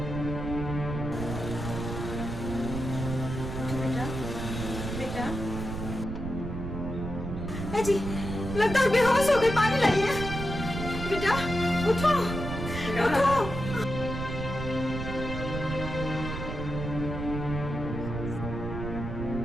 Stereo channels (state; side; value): noise; right; rumble, 5 dB below the sound